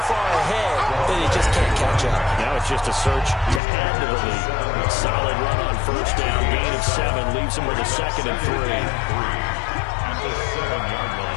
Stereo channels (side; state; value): right; drops out; at 3.6 s